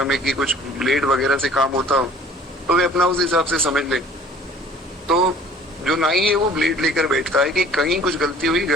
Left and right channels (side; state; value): both; normal; correlation 0.50